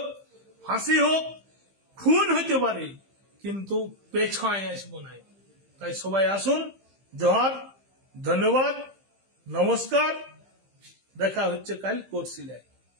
ফাঁসি হোক, খুন হতে পারে, কিন্তু পেছায় আসবো নাই। তাই সবাই আসুন। জোহার, ধন্যবাদ, নমস্কার। দেখা হচ্ছে কাল কোর্সিলায়।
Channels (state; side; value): late; left; 15 ms